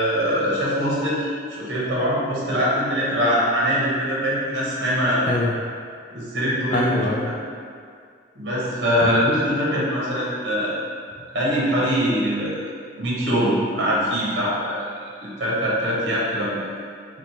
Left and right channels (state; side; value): normal; both; correlation 0.24